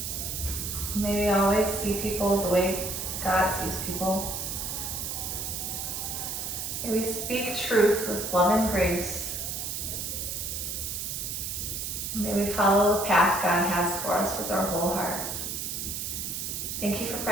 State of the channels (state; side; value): noise; right; hiss, 4 dB below the sound